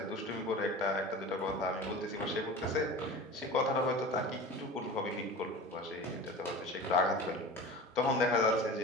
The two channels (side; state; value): both; normal; correlation 0.34